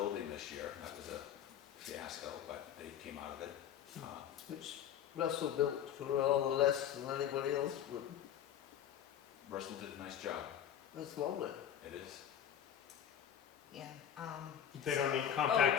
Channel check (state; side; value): quieter; right; 9.7 dB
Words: this year, that was a fiasco, but they came out of it. Which Russell built for all less than anybody else would. Russell did a nice job, That's lovely. it is. Yeah, They don't need